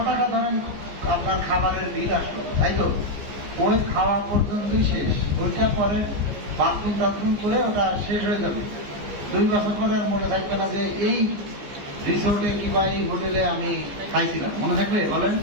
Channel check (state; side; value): late; left; 15 ms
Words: টাকা ধরেন আপনার খাবারের বিল আসলো, তাই তো? ওই খাওয়া পর্যন্তই শেষ, ওইটা পরে বাথরুম টাথরুম করে ওটা শেষ হয়ে যাবে। 2 বছর পরে আর মনে থাকবে না যে এই রিসোর্টে কিংবা এই হোটেলে আমি খাইছিলাম, মনে থাকবে বলেন?